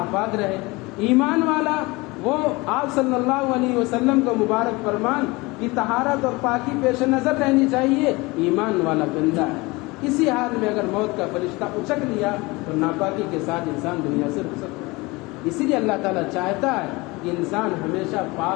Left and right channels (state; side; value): quieter; right; 23.7 dB